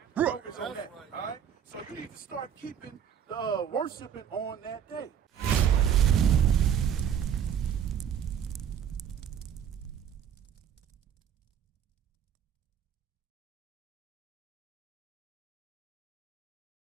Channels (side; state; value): left; quieter; 8.8 dB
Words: Right. Focus on that. Right. All right. So you need to start keeping worshiping on that day.